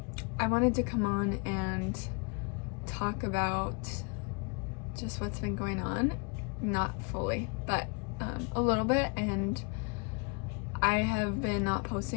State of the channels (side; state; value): right; quieter; 32.5 dB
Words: I wanted to come on and talk about just what's been going on, not fully, but a little bit, and I have been not